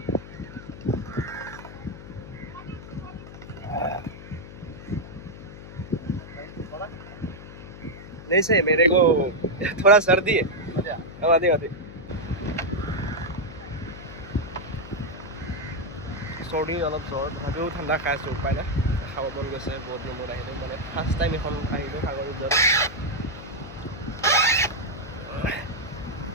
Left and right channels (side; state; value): left; noise; hum, 14 dB below the sound